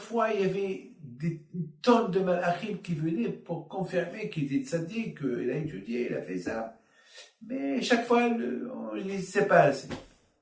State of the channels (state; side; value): identical; both; correlation 1.00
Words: il y avait des tonnes de malachim qui venaient pour confirmer qu'il était tzaddik, qu'il a étudié, il a fait ça. Mais chaque fois, on ne sait pas assez.